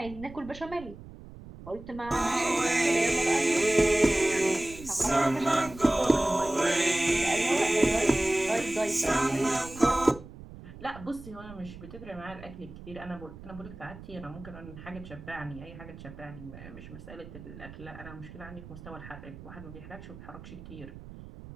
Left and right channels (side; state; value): right; noise; rumble, 15 dB below the sound